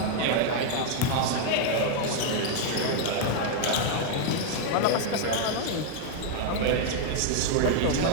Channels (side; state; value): both; different; correlation 0.00